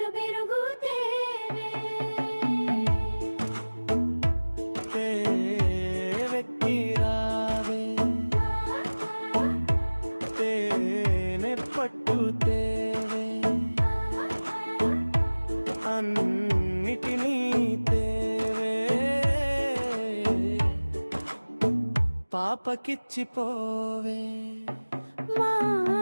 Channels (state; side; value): inverted; both; correlation -1.00